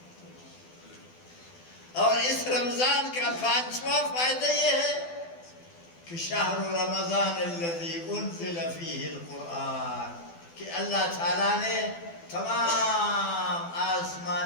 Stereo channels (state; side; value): late; right; 12 ms